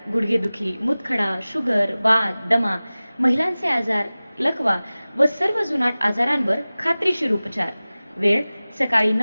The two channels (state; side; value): inverted; both; correlation -0.98